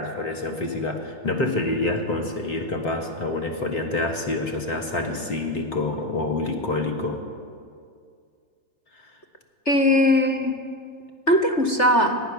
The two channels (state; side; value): late; right; 3.3 ms